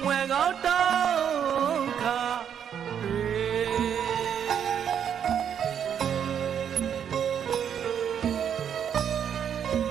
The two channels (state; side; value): quieter; left; 8.5 dB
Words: မွယ်ကောင်းတောင်းခါ